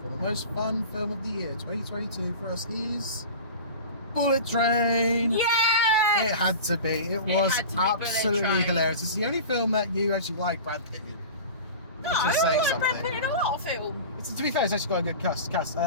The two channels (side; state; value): both; inverted; correlation -0.34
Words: for the most fun film of the year 2022 for us is Bullet Train. Yeah. It had to be. It was had to be Bullet absolutely Train. hilarious. It's the only film that you actually like Brad Pitt in. No, Just I saying like Brad something. Pitt in a lot of films. To be fair, it's actually got a good cast. It's